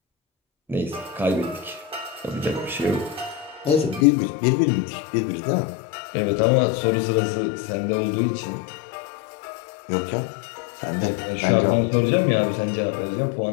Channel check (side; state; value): right; drops out; at 4.0 s